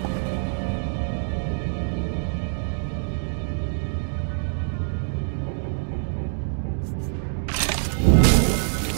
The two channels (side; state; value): left; silent; digital silence